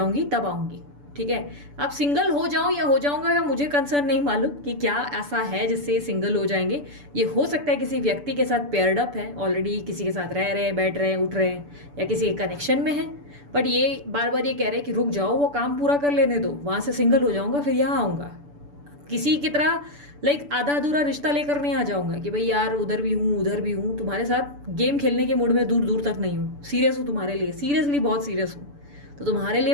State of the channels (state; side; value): late; left; 6.9 ms